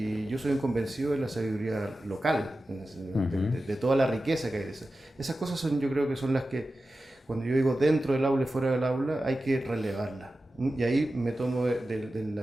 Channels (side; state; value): both; normal; correlation 0.94